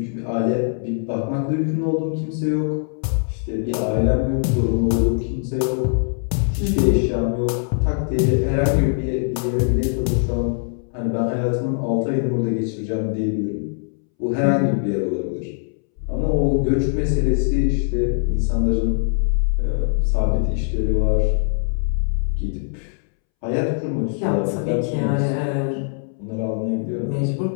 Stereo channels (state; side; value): silent; right; 64 dB below the other